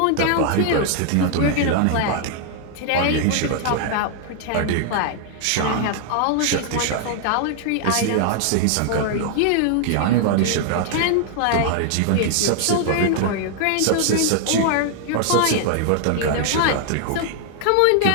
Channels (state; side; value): different; both; correlation 0.00